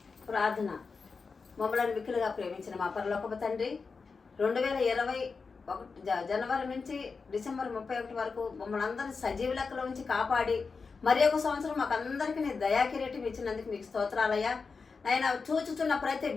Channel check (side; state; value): right; quieter; 4.8 dB